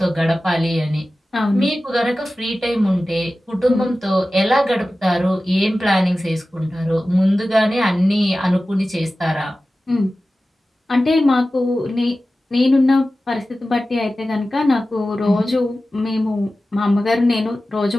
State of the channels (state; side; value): normal; both; correlation 0.95